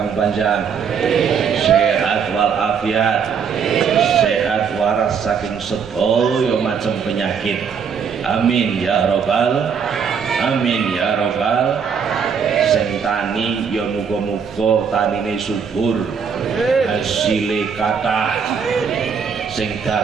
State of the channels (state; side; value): quieter; left; 6.6 dB